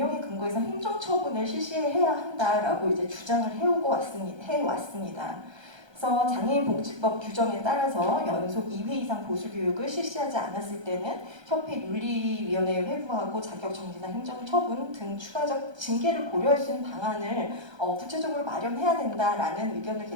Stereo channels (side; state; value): left; late; 1.3 ms